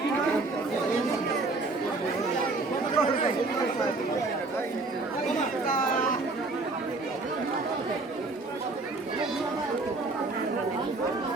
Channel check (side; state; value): left; quieter; 3.4 dB